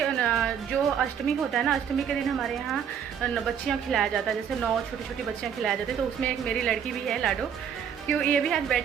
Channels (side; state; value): left; quieter; 8.0 dB